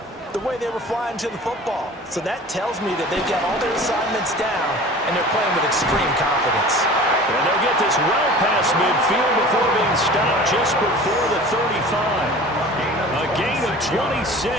the way they were flying to the football. So that tells me that they've got all their assignments down, and they're playing with extreme confidence. And they'll get this well past midfield before being stopped just before the 35. A gain of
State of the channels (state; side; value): normal; both; correlation 0.41